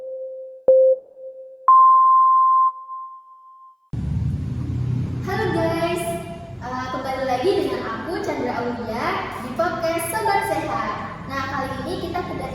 Halo guys, kembali lagi dengan aku Chandra Aulia di podcast Sobat Sehat. Nah, kali ini kita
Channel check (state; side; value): identical; both; correlation 1.00